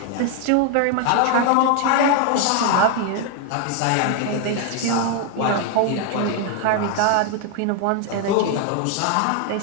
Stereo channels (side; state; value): both; different; correlation 0.01